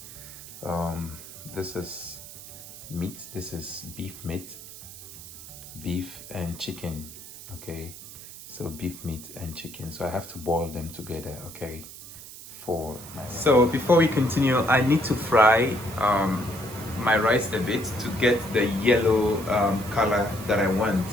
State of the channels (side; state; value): right; noise; hiss, 15 dB below the sound